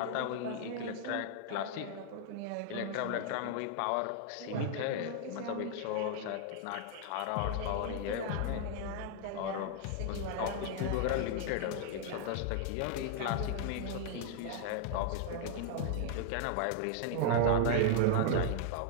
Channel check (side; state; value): both; different; correlation 0.00